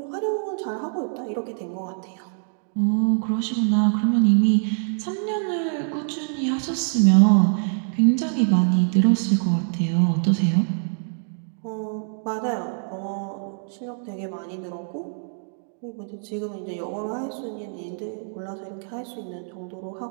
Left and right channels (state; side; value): silent; left; digital silence